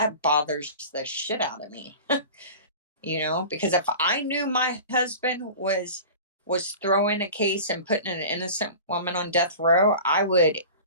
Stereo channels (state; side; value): inverted; both; correlation -0.37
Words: bothers the shit out of me. Because if I knew my husband was throwing a case and putting an innocent woman on death row, I would